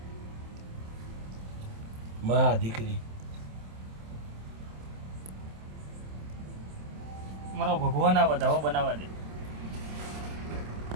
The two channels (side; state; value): left; late; 27 ms